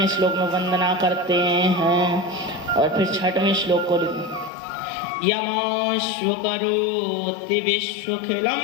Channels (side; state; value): right; drops out; at 4.5 s